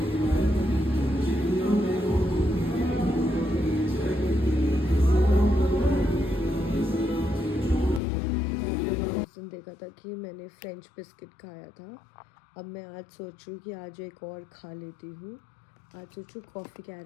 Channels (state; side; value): drops out; right; at 8.0 s